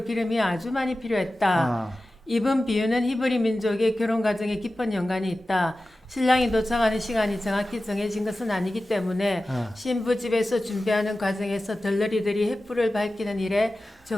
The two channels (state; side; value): normal; both; correlation 0.95